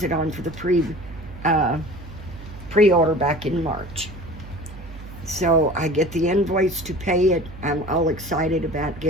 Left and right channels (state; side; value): noise; right; hum, 15 dB below the sound